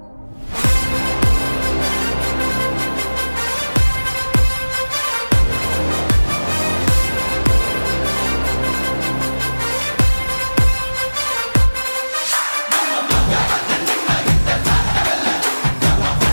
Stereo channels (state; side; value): inverted; both; correlation -1.00